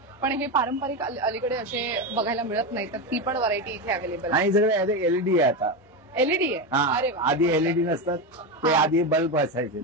पण हे पारंपरिक अलीकडे असे बघायला मिळत नाही, तर ती पण व्हरायटी इथे अवेलेबल आहे. आणि सगळे एलईडी आहे आता. एलईडी आहे. अरे वा. आधी एलईडी नसतात, ते आधी बल्ब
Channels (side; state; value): both; normal; correlation 0.15